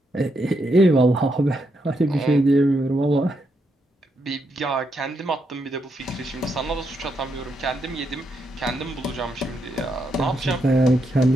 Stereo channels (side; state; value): both; normal; correlation 0.80